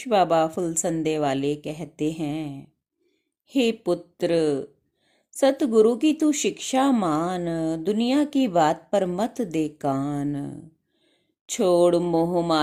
बाबा फुलसंदे वाले कहते हैं, हे पुत्र, सतगुरु की तू शिक्षा मान, दुनिया की बात पर मत दे कान। छोड़ मोह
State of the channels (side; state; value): both; identical; correlation 1.00